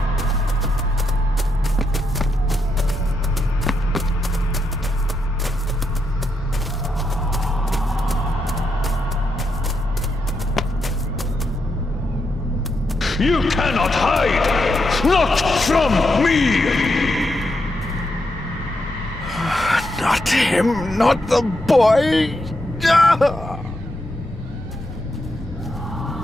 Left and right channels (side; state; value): both; normal; correlation 0.82